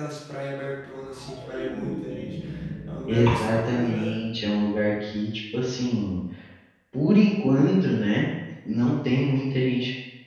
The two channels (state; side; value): identical; both; correlation 1.00